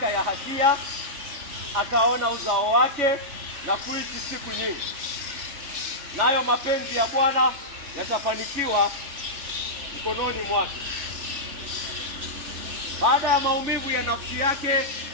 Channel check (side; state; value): left; late; 3.4 ms